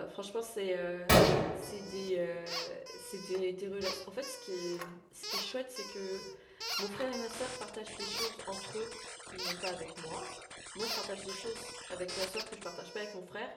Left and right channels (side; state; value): both; identical; correlation 1.00